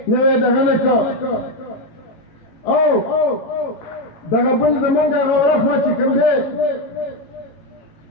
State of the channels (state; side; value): late; right; 18 ms